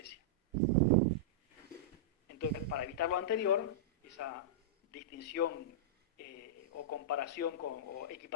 Entonces, para evitar lo anterior, esa distinción o comparación o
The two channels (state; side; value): normal; both; correlation -0.12